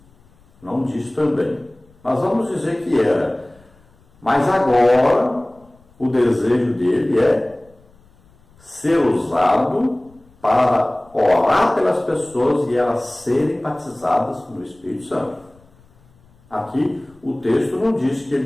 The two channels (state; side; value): noise; left; rumble, 30 dB below the sound